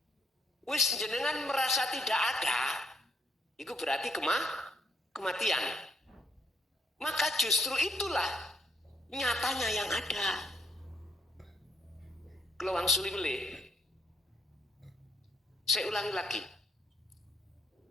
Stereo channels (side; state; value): both; normal; correlation 0.73